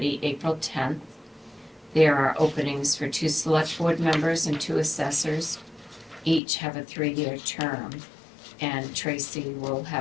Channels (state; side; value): drops out; right; at 6.4 s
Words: April 10th. There are openings for 2 select board members and 2 assessors. Each have a 3-year term. And Tracy will